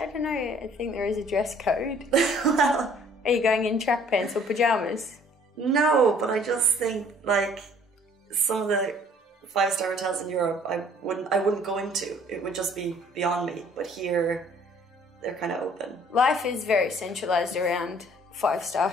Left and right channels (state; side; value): normal; both; correlation 0.57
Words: don't know. I think there is a dress code. Well, are you going in track pants or pajamas? No, but I just think like some of the 5-star hotels in Europe, I wouldn't go into. It would just be beyond me. But here, they're kind of open. Life is very centralized around 5-star